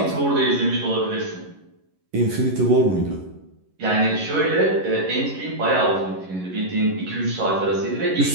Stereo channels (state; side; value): late; left; 11 ms